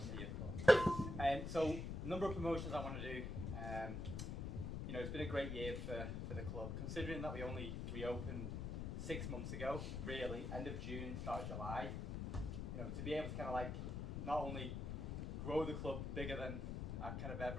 here for. So, number of promotions I want to do. You know, it's been a great year for the club, considering that we only reopened 6 months ago, really, end of June, start of July. You know, to be able to kind of like not only grow the club bigger than I kind of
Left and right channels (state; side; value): noise; left; rumble, 3 dB below the sound